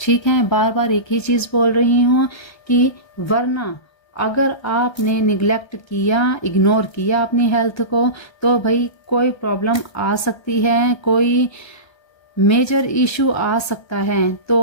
ठीक है, बार बार एक ही चीज बोल रही हूँ कि वरना अगर आपने निगलेक्ट किया, इग्नोर किया अपनी हेल्थ को, तो भाई कोई प्रॉब्लम आ सकती है, कोई मेजर इशू आ सकता है।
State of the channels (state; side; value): late; right; 1.3 ms